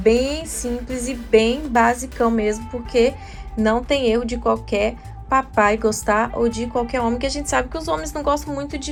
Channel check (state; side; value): identical; both; correlation 1.00